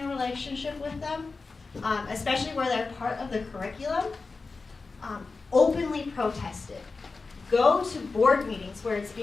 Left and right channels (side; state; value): right; quieter; 4.1 dB